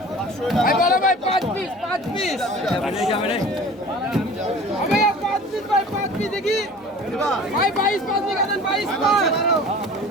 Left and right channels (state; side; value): normal; both; correlation 0.42